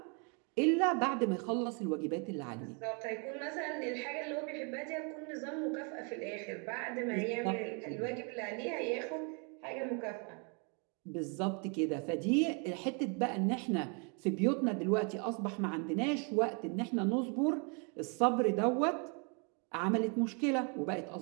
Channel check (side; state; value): left; quieter; 36.3 dB